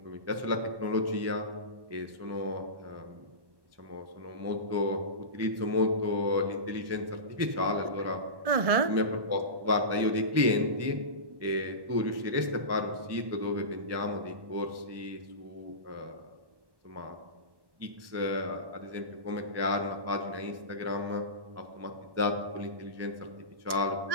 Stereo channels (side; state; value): left; late; 1.1 ms